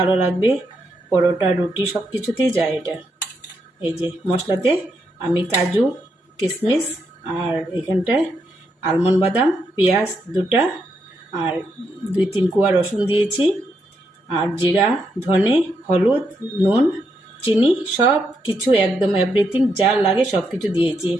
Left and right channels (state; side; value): normal; both; correlation 0.80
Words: লাগবে, পরোটা রুটি সব কিছুতেই যায় এটা। এই যে মশলাতে আমি কাজু কিশমিশ আর এখানটায় আলমন্ড বাদাম, পেঁয়াজ 2টা আর 2-3 কোয়া রসুন দিয়েছি, আর জিরা, ধনে, হলুদ, নুন, চিনি সব কিছু একদম এভরিথিং যা লাগে সব কিছু দিয়েছি,